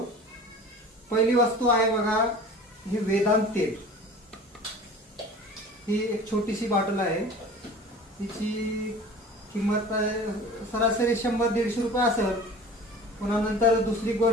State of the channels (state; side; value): normal; both; correlation 0.41